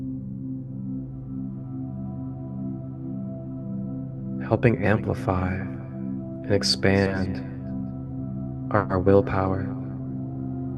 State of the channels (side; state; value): both; identical; correlation 1.00